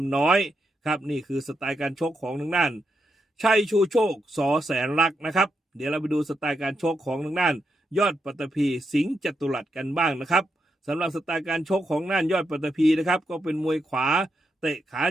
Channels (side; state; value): both; normal; correlation 0.83